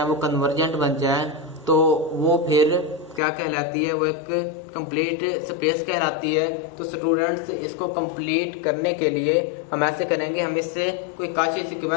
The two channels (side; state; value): right; drops out; at 3.2 s